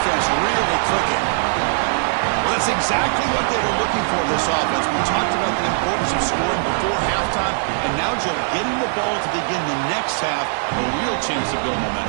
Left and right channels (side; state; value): left; silent; digital silence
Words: really clicking. Well, that's exactly what they were looking for, this offense. We talked about the importance of scoring before halftime, and now, Joe, getting the ball to begin the next half, a real chance to build